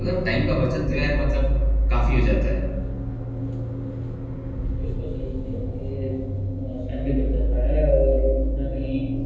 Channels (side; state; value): both; identical; correlation 1.00